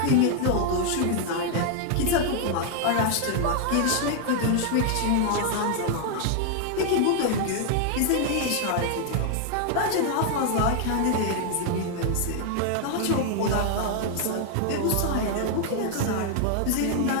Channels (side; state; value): both; different; correlation 0.00